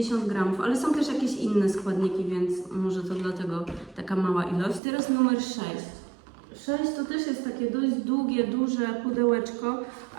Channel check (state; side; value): drops out; left; at 4.8 s